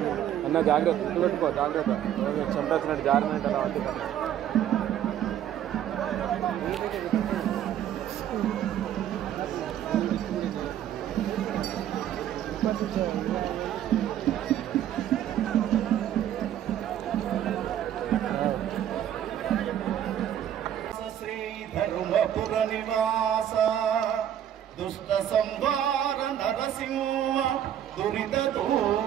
అన్న, జాగ్రత్త పెట్టుకో, జాగ్రత్త చెంట వచ్చినట్టు జారినట్టు అలా ఉంటుంది. శ్రీ ధర్మపుర నివాస దుష్ట సంహార నరసింహ దురిత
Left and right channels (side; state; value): left; quieter; 10.7 dB